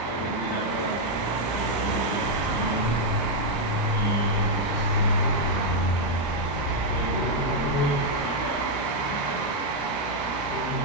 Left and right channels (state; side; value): late; right; 34 ms